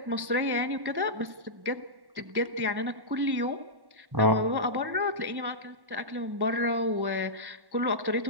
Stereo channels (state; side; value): late; left; 1.1 ms